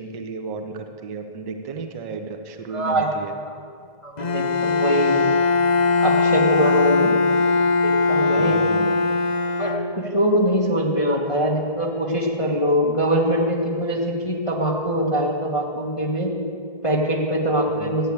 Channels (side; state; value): right; late; 2.0 ms